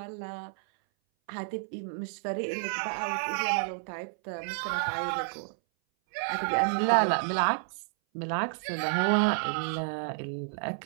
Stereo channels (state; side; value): silent; left; 57 dB below the other